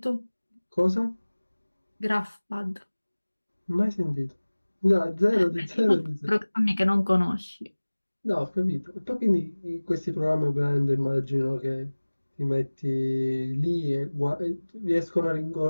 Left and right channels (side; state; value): both; inverted; correlation -1.00